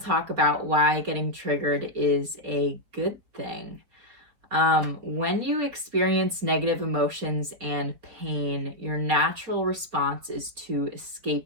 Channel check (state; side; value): late; left; 4.4 ms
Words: talk about why getting triggered is a good thing. When you experience negative emotions and pain, your natural response is to